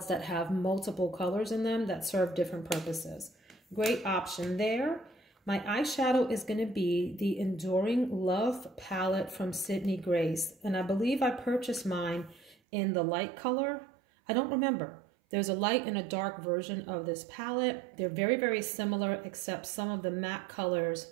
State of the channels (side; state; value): left; drops out; at 12.6 s